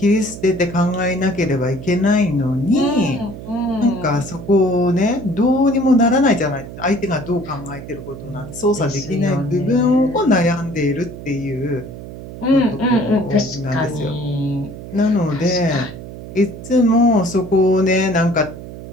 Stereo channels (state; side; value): noise; right; hum, 12 dB below the sound